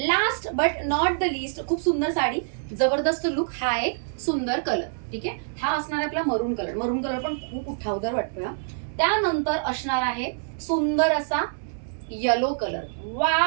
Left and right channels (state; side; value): silent; left; 61 dB below the other